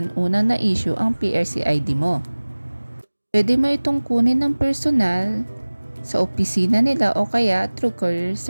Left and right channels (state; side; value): inverted; both; correlation -1.00